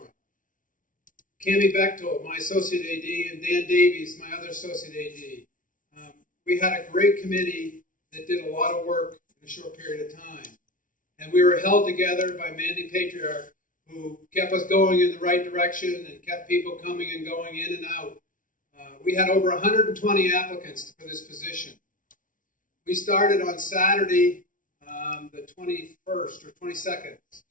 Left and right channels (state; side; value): late; right; 0.38 ms